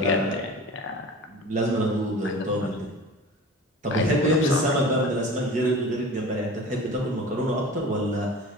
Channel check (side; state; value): both; normal; correlation 0.37